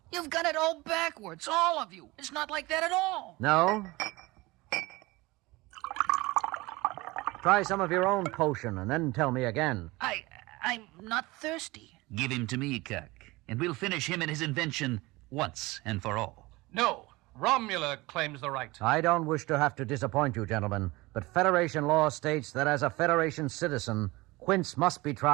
You've got it all backwards, all of you. It's not like that at all. No? Try some of your own potion and then tell me again. I'm not thirsty. Give him to me, Kirk, and we'll finish him and his invention once and for all. No, Romula claims the right. I don't wish to have to disappoint you, gentlemen, but Federation law states that as a Federation citizen, Quince must be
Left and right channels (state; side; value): quieter; left; 21.7 dB